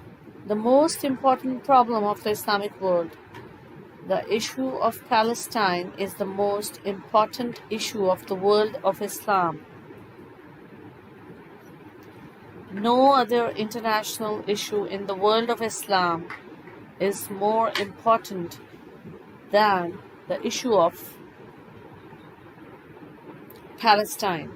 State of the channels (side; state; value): both; identical; correlation 1.00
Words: the most important problem of the Islamic world. The issue of Palestine is the most important issue of the world of Islam. No other international issue in the world of Islam is more important than the issue of Palestine.